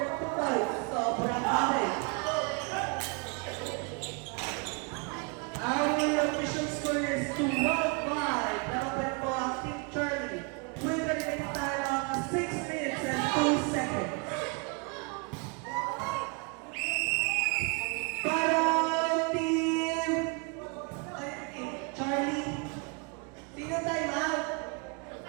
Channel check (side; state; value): left; quieter; 33.0 dB